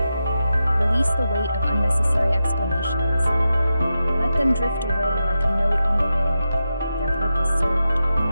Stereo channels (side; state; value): both; inverted; correlation -0.90